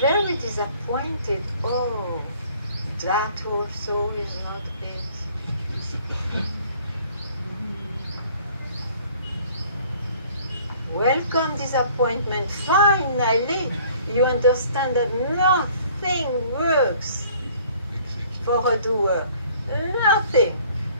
disappointed. Oh, that also is not it. Welcome disappointment. Finally, you understand that nothing works for a doer. Nothing.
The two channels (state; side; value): inverted; both; correlation -0.55